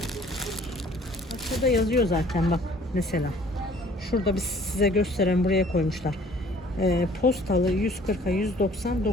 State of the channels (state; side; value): normal; both; correlation 0.54